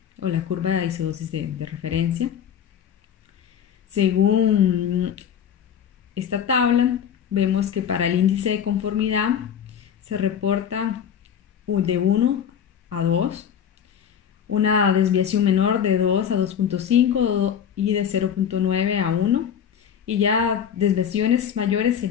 o la curva de isodosis de referencia. Según esta tabla, vemos que para el índice de conformidad se reporta de 1 a 2, una desviación menor de 2 a 2.5 y de 0.9 a 1, y ya desviaciones mayores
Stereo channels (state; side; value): quieter; right; 8.5 dB